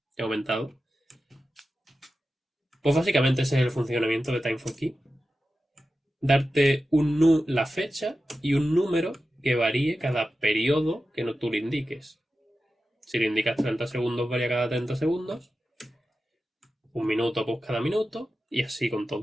He aumentado. Pues básicamente ese es el funcionamiento de Time for Key. Darte la fecha y un número que varíe cada periodo que tú le indiques. Si le indicas 30 segundos, varía cada 30 segundos. Un minuto, pues cada minuto. Y así con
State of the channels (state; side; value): normal; both; correlation 0.92